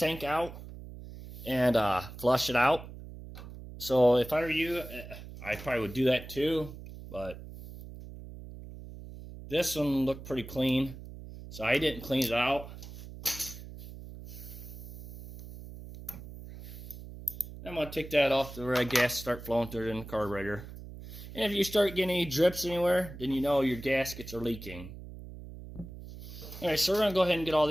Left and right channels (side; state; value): right; noise; hum, 13 dB below the sound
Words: out and flush it out. So if I were you, I probably would do that too, but this one looked pretty clean, so I didn't clean it out. I'm going to take that off the red gas, start flowing through it in the carburetor. And if you start getting any drips anywhere, then you know your gaskets are leaking. Alright, so we're going to go ahead and get all